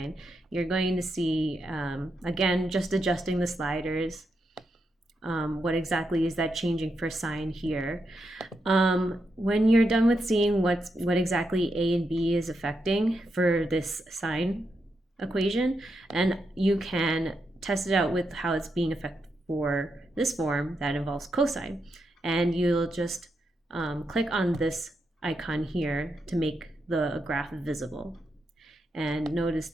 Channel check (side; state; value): both; normal; correlation 0.84